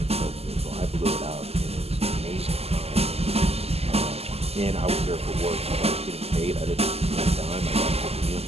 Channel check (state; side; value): late; left; 0.29 ms